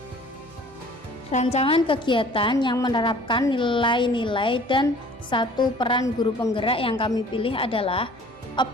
Rancangan kegiatan yang menerapkan nilai-nilai dan 1 peran guru penggerak yang kami pilih adalah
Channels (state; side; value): normal; both; correlation 0.50